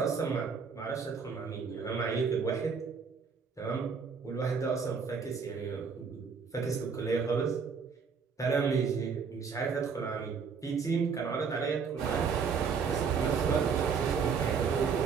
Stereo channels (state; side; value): quieter; left; 5.8 dB